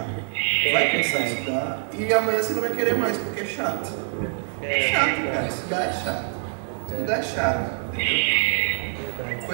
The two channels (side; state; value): left; silent; 62 dB below the other